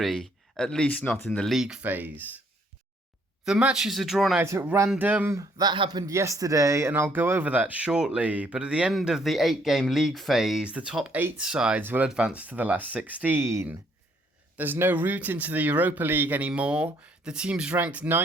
at least not in the league phase. The matches are drawn out at random. That happened yesterday, and I'll go over that shortly. But at the end of the 8-game league phase, the top 8 sides will advance to the last 16. There's no route into the Europa League anymore. The teams ranked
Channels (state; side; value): normal; both; correlation 0.67